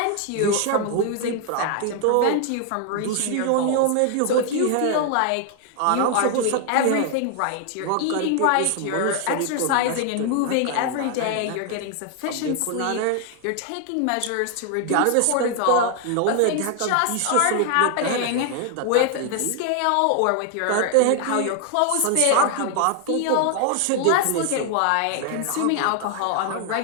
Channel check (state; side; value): different; both; correlation 0.00